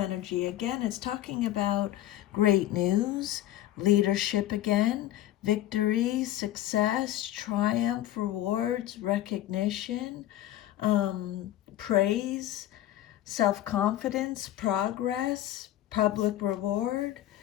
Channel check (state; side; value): quieter; right; 13.7 dB